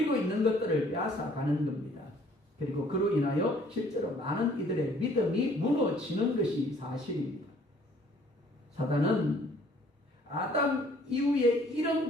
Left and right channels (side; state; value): both; normal; correlation 0.58